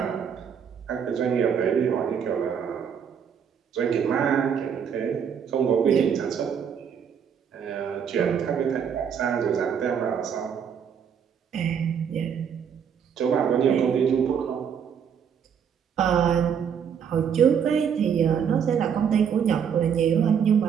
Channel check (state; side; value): quieter; left; 7.6 dB